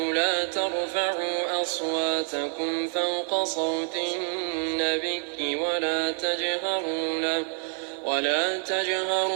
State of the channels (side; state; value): left; silent; 56 dB below the other